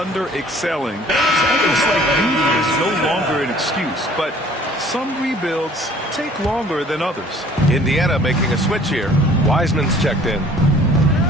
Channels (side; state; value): both; normal; correlation 0.54